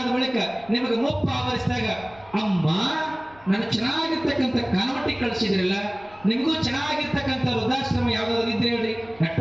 ಬಳಿಕ ನಿಮಗೆ ಮುಪ್ಪ ಆವರಿಸಿದಾಗ, ಅಮ್ಮ ನಾನು ಚೆನ್ನಾಗಿರ್ತಕ್ಕಂಥ ಕಾನ್ವೆಂಟಿಗೆ ಕಳಿಸಿದ್ರಲ್ಲ, ನಿಮಗೂ ಚೆನ್ನಾಗಿರ್ತಕ್ಕಂಥ ವೃದ್ಧಾಶ್ರಮ ಯಾವ್ದಾದ್ರು ಇದ್ರೆ ಹೇಳ್ರಿ,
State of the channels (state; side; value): noise; left; rumble, 27 dB below the sound